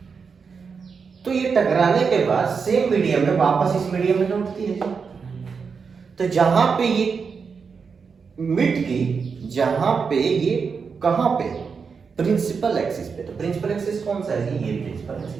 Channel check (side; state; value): left; quieter; 5.6 dB